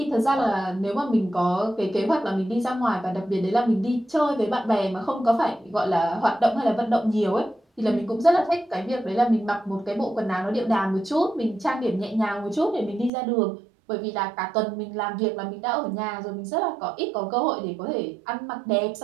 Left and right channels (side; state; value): left; drops out; at 13.1 s